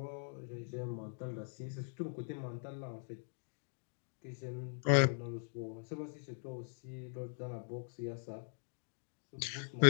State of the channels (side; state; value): right; silent; digital silence